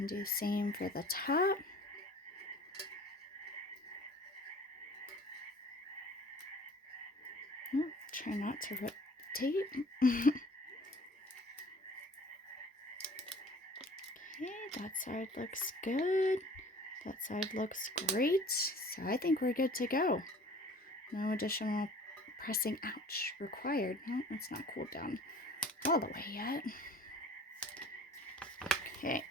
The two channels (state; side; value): normal; both; correlation 0.48